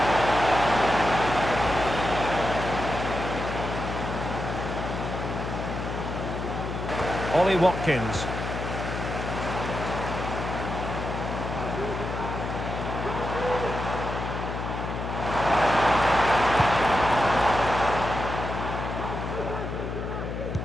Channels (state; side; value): noise; left; hum, 5 dB below the sound